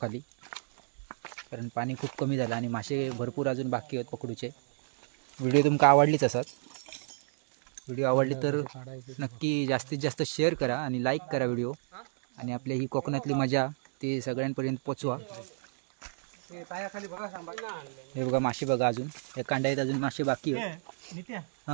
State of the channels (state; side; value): silent; left; digital silence